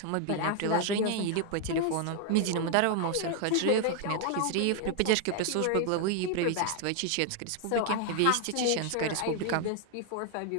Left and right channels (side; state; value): both; different; correlation 0.00